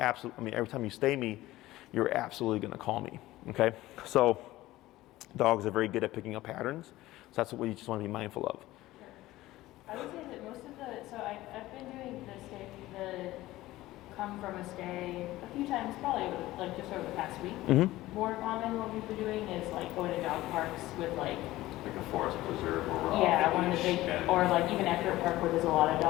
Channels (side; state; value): right; quieter; 16.9 dB